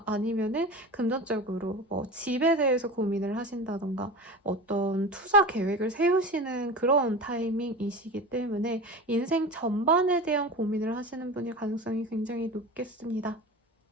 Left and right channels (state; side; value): normal; both; correlation 0.31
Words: 아니면은 금전적으로 뭐 집에 대해서 고민을 하신다던가 어떤 투자 계획을 세우시는 그런 타이밍이시기 때문에 인생 전반에 대한 고민을 하시는 분일 가능성이 굉장히 높겠습니다.